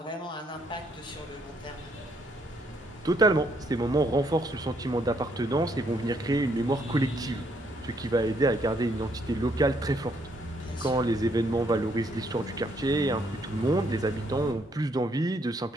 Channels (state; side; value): normal; both; correlation 0.71